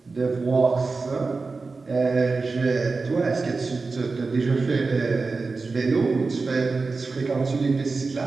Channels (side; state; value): left; quieter; 4.1 dB